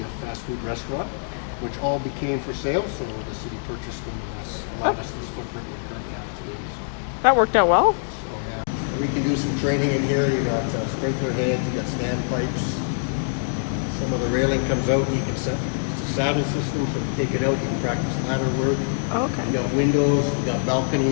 a fast food restaurant, which all became for sale. So the city purchased them and allowed us this footprint we currently have today. So, That worked out well. yeah. We can do some training in here. You got sprinkler heads. You got standpipes. Some of the railing comes out. You can set. It's a saddle system, so you take it out. You can practice ladder work. Okay. We got windows. We got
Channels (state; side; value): silent; right; digital silence